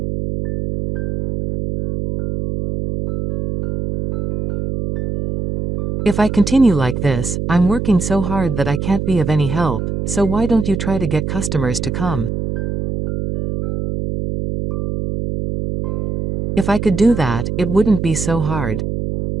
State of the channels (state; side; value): noise; right; hum, 3 dB below the sound